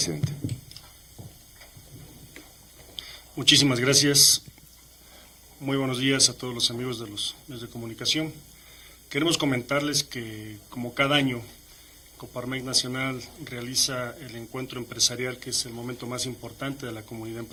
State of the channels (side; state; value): both; identical; correlation 1.00